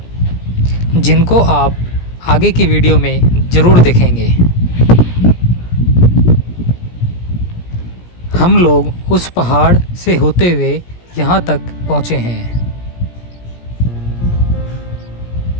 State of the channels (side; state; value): right; late; 17 ms